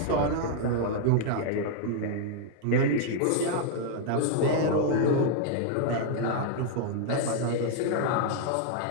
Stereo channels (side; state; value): both; different; correlation -0.01